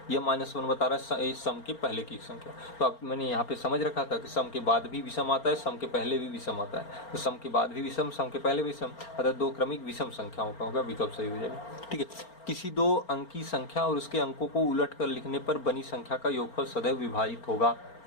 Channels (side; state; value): right; late; 4.4 ms